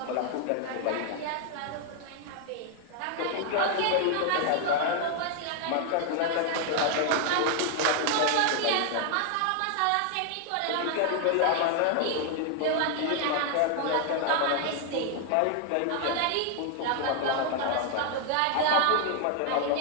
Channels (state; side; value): different; both; correlation 0.00